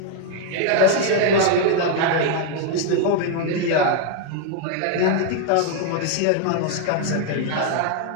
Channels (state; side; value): different; both; correlation 0.00